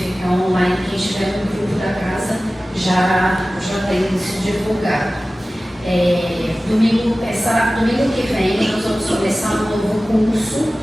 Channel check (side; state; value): both; normal; correlation 0.96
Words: online. Quem estiver no grupo da casa já tem isso divulgado. Domingo que vem nós vamos começar um novo curso